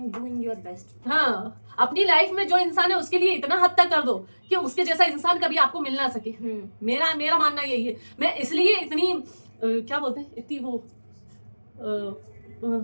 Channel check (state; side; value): inverted; both; correlation -1.00